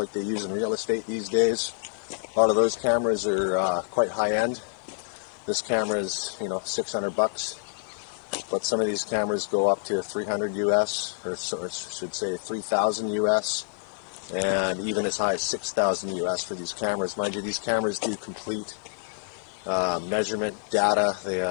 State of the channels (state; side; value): silent; right; 57 dB below the other